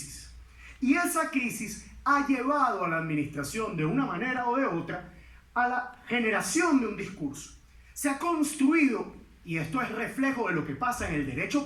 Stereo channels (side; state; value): both; identical; correlation 1.00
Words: Y esa crisis ha llevado a la administración de una manera o de otra a la generación de un discurso. Se ha construido, y esto es reflejo de lo que pasa en el derecho